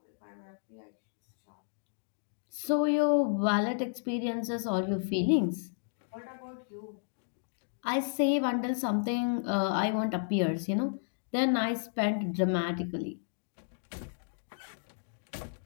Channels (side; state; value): right; silent; digital silence